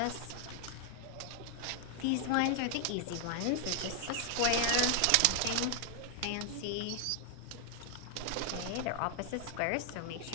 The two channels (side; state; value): both; different; correlation 0.00